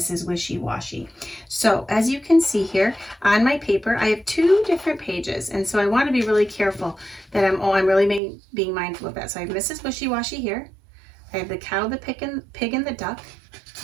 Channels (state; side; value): drops out; left; at 8.2 s